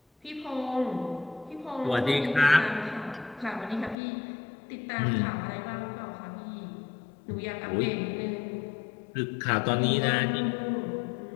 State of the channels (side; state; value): right; drops out; at 4.0 s